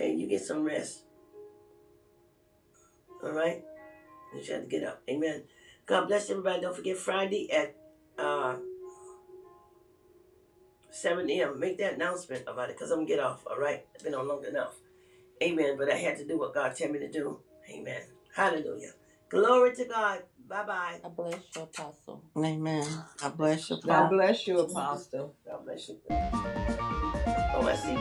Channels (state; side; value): identical; both; correlation 1.00